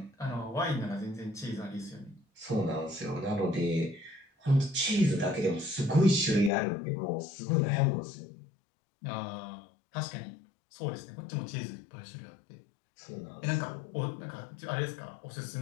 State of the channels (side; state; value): right; drops out; at 6.5 s